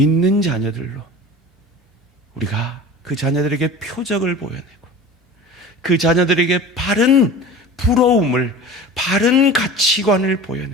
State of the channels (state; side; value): normal; both; correlation 0.37